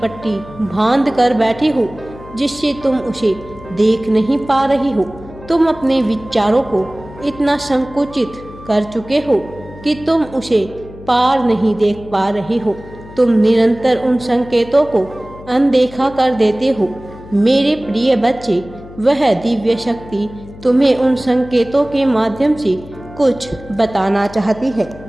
बांध कर बैठे हो जिससे तुम उसे देख नहीं पा रही हो। तुम अपने विचारों को इतना संकुचित कर चुके हो कि तुम उसे पार नहीं देख पा रहे हो। तुम निरंतर उन संकेतों को अनदेखा कर देते हो। मेरे प्रिय बच्चे, वह दिव्य शक्ति तुम्हें उन संकेतों के माध्यम से कुछ बताना चाहती है।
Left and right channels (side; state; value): left; noise; hum, 17 dB below the sound